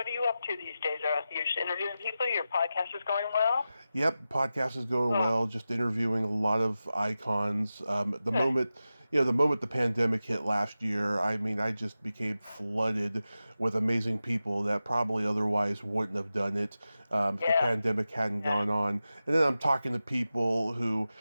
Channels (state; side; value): inverted; both; correlation -0.93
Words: are you up to these days? You're just interviewing people? Your podcast is going well? Yep, podcast is going well. Just interviewing a lot of icons. The moment, the moment the pandemic hit last year, I mean, I just became flooded with amazing people that probably otherwise wouldn't have done it if the pandemic hadn't gone on. And then I'm talking to people who